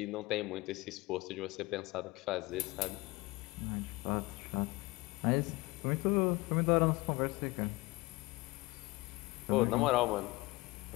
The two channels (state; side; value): quieter; right; 22.3 dB